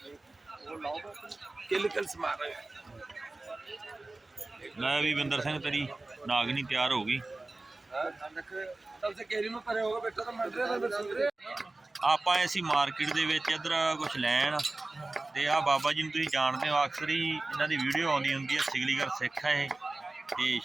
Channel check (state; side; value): quieter; left; 3.1 dB